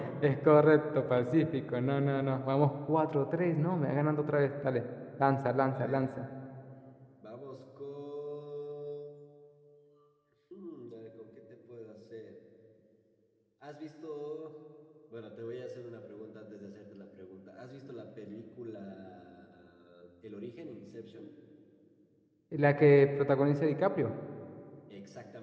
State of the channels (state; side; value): identical; both; correlation 1.00